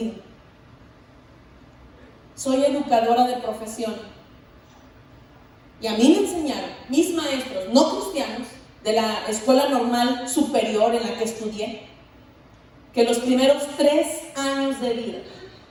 Soy educadora de profesión y a mí me enseñaron mis maestros no cristianos de la escuela normal superior en la que estudié, que los primeros 3 años de vida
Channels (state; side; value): identical; both; correlation 1.00